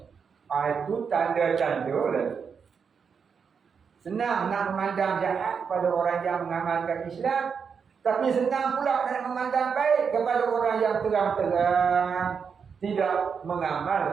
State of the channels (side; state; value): left; quieter; 6.3 dB